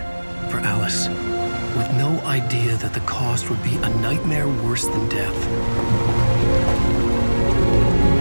for Alice, with no idea that the cost would be a nightmare worse than death.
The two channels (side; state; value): both; inverted; correlation -1.00